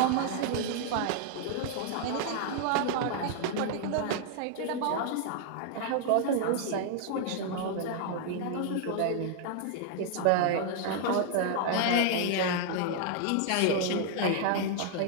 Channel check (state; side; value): different; both; correlation -0.01